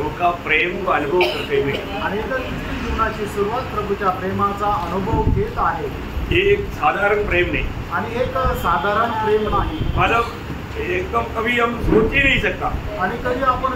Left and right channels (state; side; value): identical; both; correlation 1.00